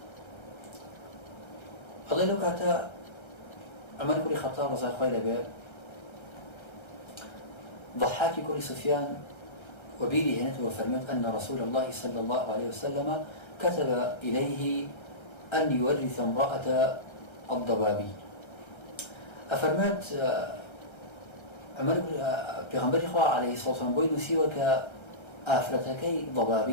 الله لو كاتا عمر بن الخطاب رضي الله عنه ضحاك كوري سفيان وبيلي هنا وفرميت أن رسول الله صلى الله عليه وسلم كتب إليه أن يورث امرأة الضبابي أفرمت عمر پیغمبر خوا عليه الصلاة والسلام بوي نسيوه كآفرتكي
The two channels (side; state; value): right; late; 1.3 ms